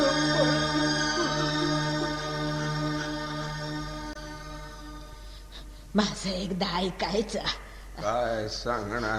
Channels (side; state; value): both; identical; correlation 1.00